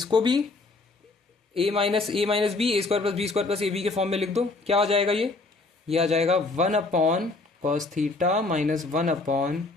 भी a minus B a square plus b square plus a b के form में लिख दो। क्या आ जाएगा ये आ जाएगा 1 upon cos theta minus 1 upon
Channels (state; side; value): quieter; right; 3.4 dB